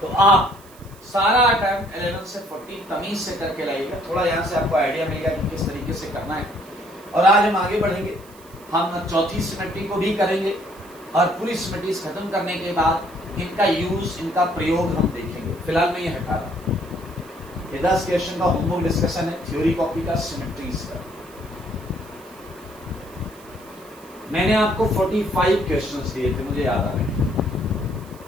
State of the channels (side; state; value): right; noise; hiss, 24 dB below the sound